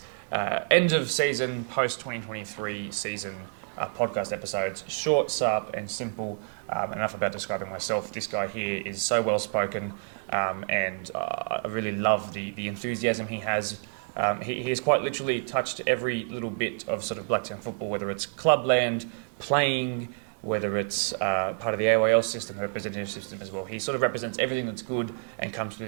end of season, post 2023 season podcast episodes. Short, sharp, and simple. Enough about describing myself. This guy here is so well spoken, and I really love the enthusiasm he has. He has quite literally touched every little bit of sort of Blacktown football, whether it's clubland, playing, whether it's part of the AYL system, representative system as well. He sort of represents everything that's good and comes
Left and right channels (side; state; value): left; silent; 59 dB below the other